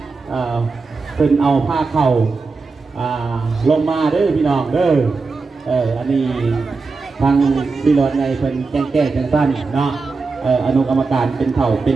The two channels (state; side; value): quieter; left; 4.3 dB